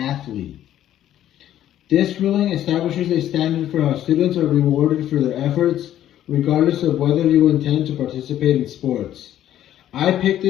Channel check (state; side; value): quieter; right; 11.9 dB